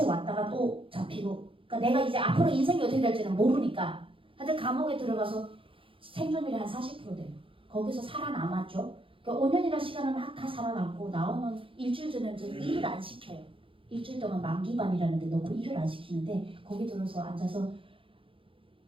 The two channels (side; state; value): left; late; 0.26 ms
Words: 왔다가 또 잡히고 그러니까 내가 이제 앞으로 인생이 어떻게 될지는 모르니까 하여튼 감옥에 들어가서 생존율이 한 40% 돼요. 거기서 살아남았죠. 그러니까 5년이라는 시간을 막 다 살아남고 나오면 일주일 전에는 저는 일을 안 시켜요. 일주일 동안 만기반이라는 데 넣고 일을 안 시키는데 거기 들어서 앉아서